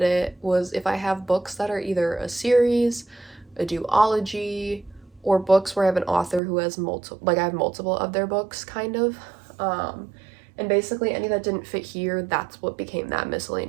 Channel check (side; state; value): left; drops out; at 6.4 s